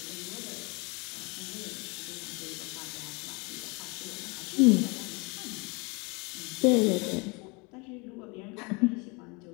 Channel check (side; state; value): right; quieter; 28.7 dB